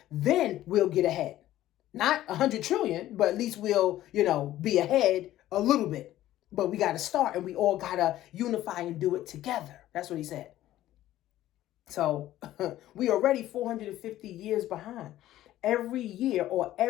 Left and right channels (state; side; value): quieter; right; 14.1 dB